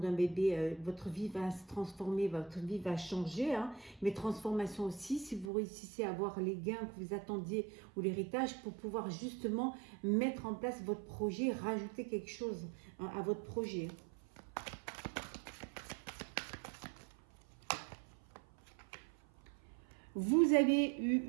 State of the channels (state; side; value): drops out; left; at 5.5 s